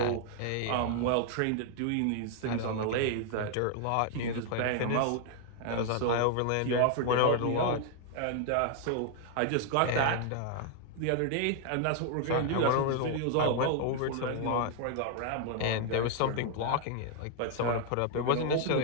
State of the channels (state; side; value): different; both; correlation 0.00